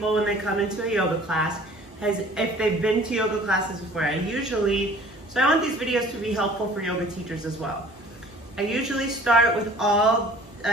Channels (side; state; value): both; normal; correlation 0.50